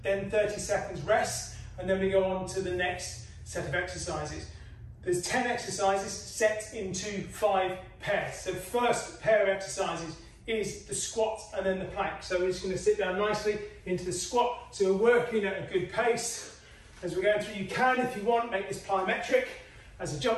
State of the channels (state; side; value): identical; both; correlation 1.00